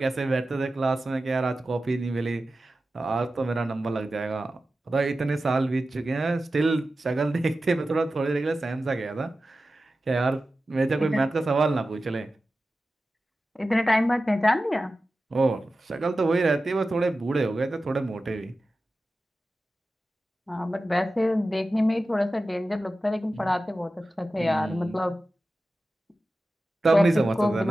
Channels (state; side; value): normal; both; correlation 0.94